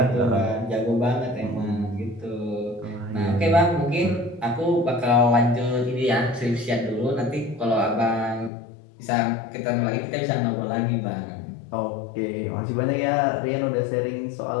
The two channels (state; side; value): drops out; right; at 8.5 s